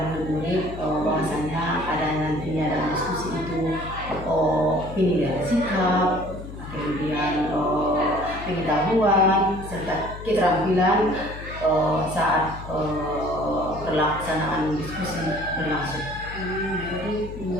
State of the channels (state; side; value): noise; left; hum, 12 dB below the sound